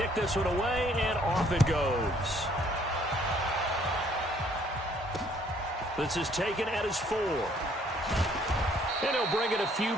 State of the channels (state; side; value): normal; both; correlation 0.63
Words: this one away, and off it goes. This is taken at his 4. And he'll bring it a few